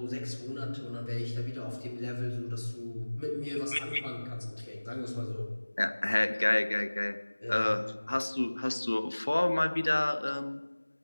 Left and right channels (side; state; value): both; inverted; correlation -1.00